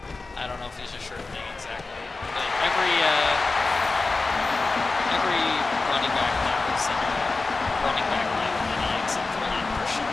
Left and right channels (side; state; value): right; quieter; 3.7 dB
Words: I don't know if he's a sure thing exactly, but every running back now is in a running back like mini except for like Christian